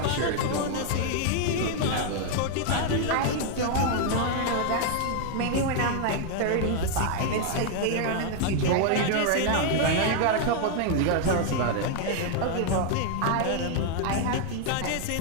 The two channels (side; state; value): both; different; correlation 0.00